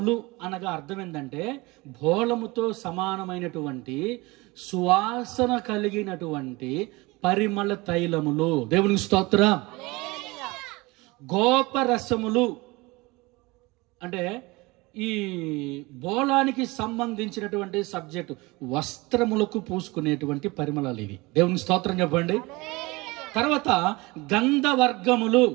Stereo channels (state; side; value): quieter; left; 23.4 dB